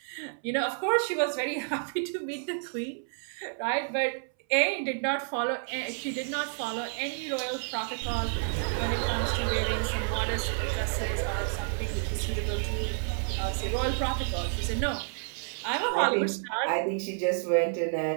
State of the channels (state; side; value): silent; left; 58 dB below the other